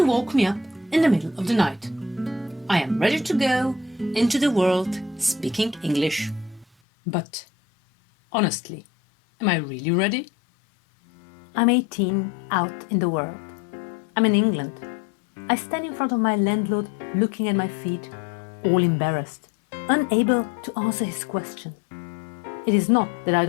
woke me up in the middle of the night. I am ready to go into the world speaking English. But, honestly, am I really ready? I'm 18, out in the world. I'm in England. I stand in front of my landlord, looking at my feet, all embarrassed, unable to answer his question. It is not that I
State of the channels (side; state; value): right; drops out; at 6.7 s